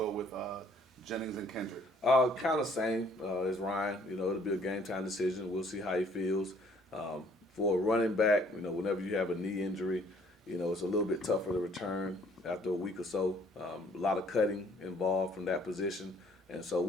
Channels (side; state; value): both; normal; correlation 0.60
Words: with Jennings and Kendrick? Kind of same as Ryan. It'll be a game time decision. We'll see how he feels. For a running back, whenever you have a knee injury, it's a little bit tougher to return after a week or so. A lot of cutting involved from that position, and so